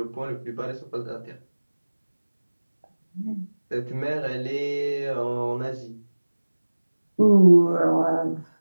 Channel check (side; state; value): both; inverted; correlation -1.00